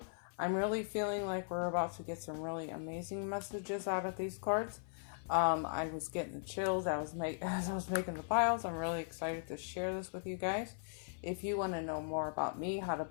I'm really feeling like we're about to get some really amazing messages out of these cards. I was getting the chills as I was making the piles. I'm really excited to share this with you guys. If you want to know more about me, how to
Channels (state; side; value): silent; right; 52 dB below the other